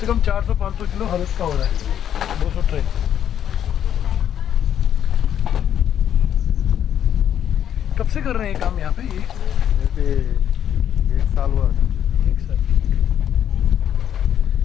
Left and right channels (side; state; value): right; quieter; 9.7 dB